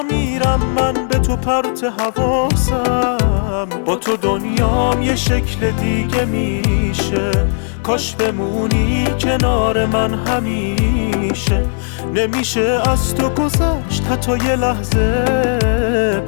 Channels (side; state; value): right; silent; 57 dB below the other